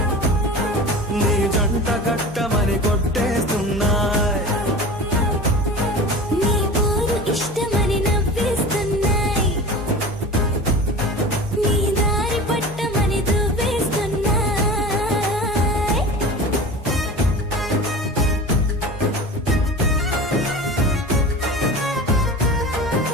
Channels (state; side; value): normal; both; correlation 0.35